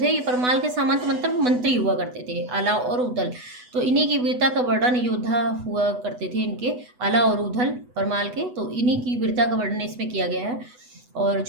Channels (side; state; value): left; late; 8.1 ms